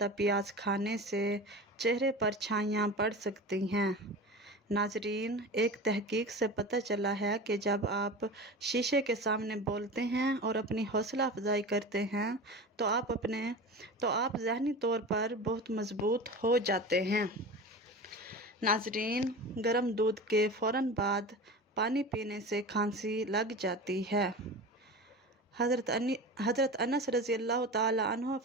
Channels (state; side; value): normal; both; correlation 0.31